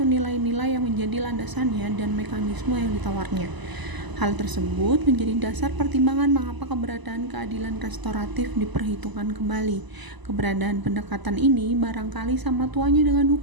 nilai-nilai yang menjadi landasannya dan mekanisme yang ditawarnya. Hal tersebut menjadi dasar pertimbangan mengapa keberadaan keadilan restoratif diperhitungkan kembali. Keberadaan pendekatan ini barangkali sama tuanya dengan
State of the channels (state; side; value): late; left; 1.0 ms